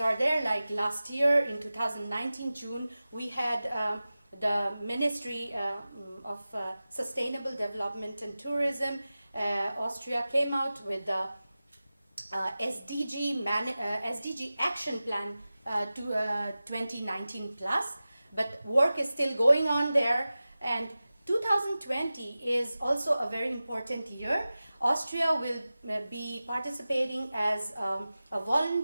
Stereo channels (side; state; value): both; inverted; correlation -0.96